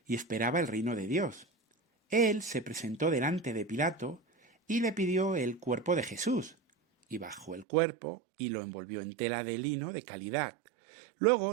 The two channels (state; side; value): drops out; left; at 7.7 s